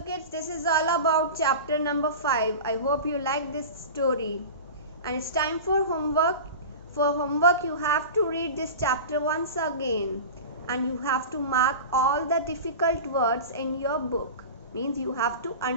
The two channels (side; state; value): both; inverted; correlation -0.31